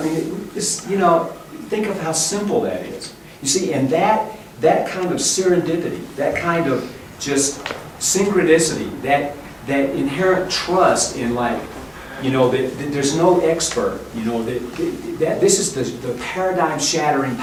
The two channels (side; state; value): both; identical; correlation 1.00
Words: think of how simple that is. You see, and that kind of serendipity, that kind of just synchronicity, that inherent trust in that there's no expert, that this is the paradigm-shattering